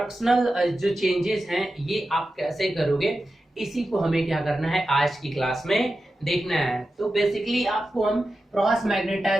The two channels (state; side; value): normal; both; correlation 0.92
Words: जो चेंजेस हैं ये आप कैसे करोगे, इसी को हमें क्या करना है आज की क्लास में देखना है। तो बेसिकली आपको हम क्रॉस